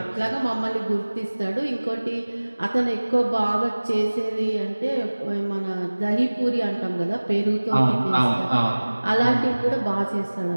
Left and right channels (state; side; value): inverted; both; correlation -1.00